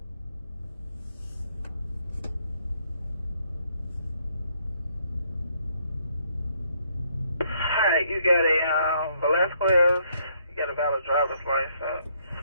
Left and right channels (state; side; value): inverted; both; correlation -0.70